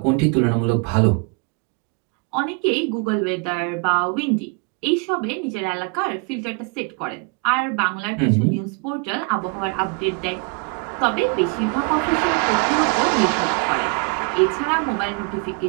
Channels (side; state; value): left; quieter; 32.4 dB